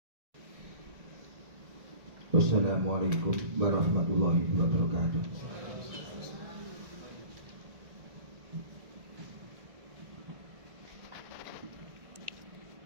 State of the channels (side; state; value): left; late; 1.8 ms